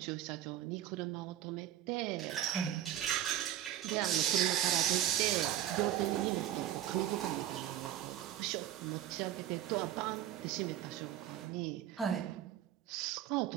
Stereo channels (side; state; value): left; quieter; 11.9 dB